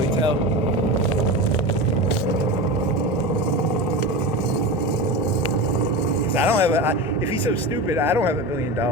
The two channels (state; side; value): normal; both; correlation 0.25